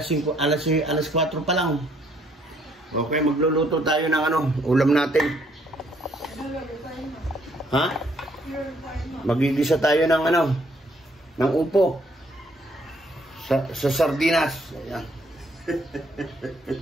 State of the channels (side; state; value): both; normal; correlation 0.67